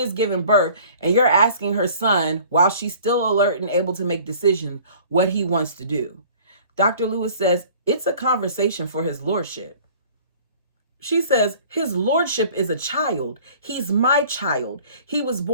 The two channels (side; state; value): both; inverted; correlation -0.49